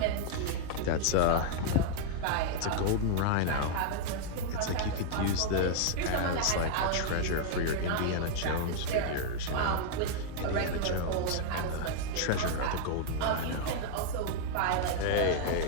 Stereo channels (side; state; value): both; different; correlation -0.01